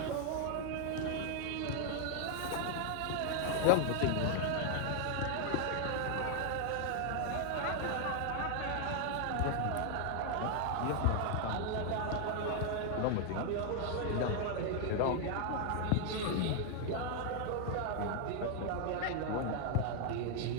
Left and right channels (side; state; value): both; different; correlation 0.00